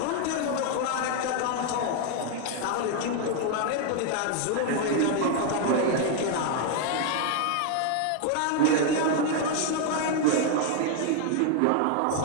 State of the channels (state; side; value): different; both; correlation 0.00